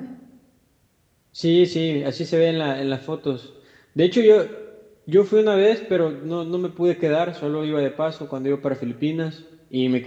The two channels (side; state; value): both; identical; correlation 1.00